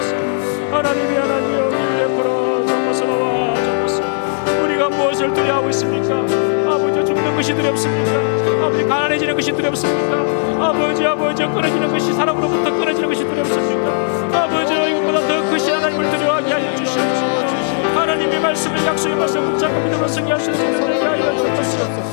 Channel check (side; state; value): right; silent; digital silence